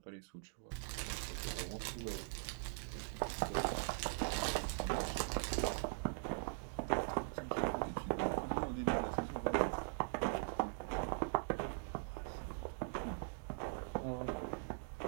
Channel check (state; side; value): silent; left; digital silence